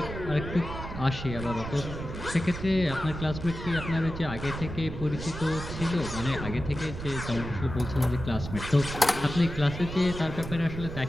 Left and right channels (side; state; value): right; noise; rumble, 8 dB below the sound